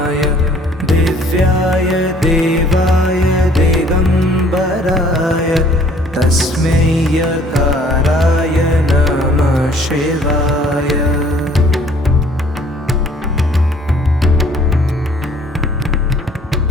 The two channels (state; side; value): normal; both; correlation 0.57